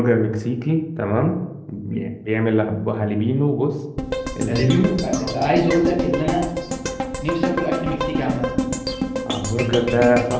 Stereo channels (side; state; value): both; identical; correlation 1.00